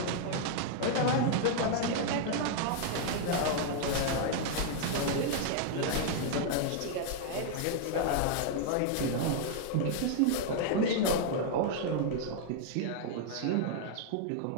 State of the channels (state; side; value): different; both; correlation 0.00